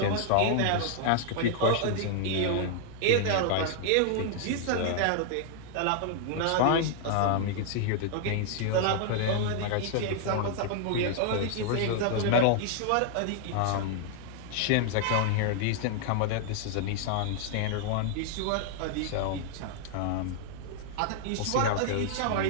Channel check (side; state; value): both; different; correlation 0.00